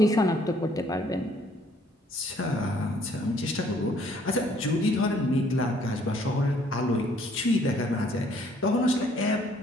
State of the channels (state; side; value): normal; both; correlation 0.62